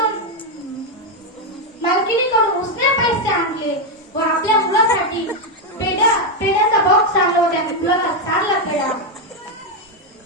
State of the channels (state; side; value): normal; both; correlation 0.03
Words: उसने पैसे आणले व आपल्या मुलासाठी पेढ्याचा बॉक्स आणला व त्या मुलाला चारला पेढा.